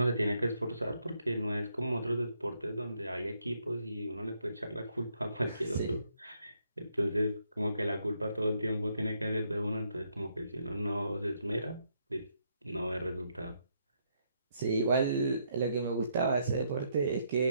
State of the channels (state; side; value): inverted; both; correlation -0.75